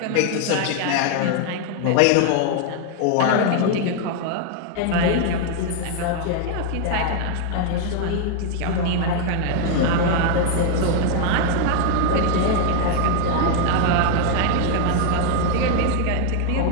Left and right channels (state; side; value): different; both; correlation 0.00